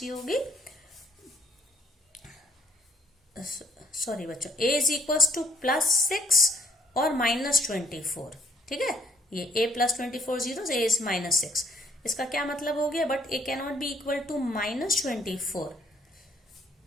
होगी, सॉरी बच्चों, a इज इक्वल टू +6 और -24, ठीक है, ये a plus 24 zero, a is -6, इसका क्या मतलब हो गया, but a can not be equal to -24,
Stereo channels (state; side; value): normal; both; correlation 0.65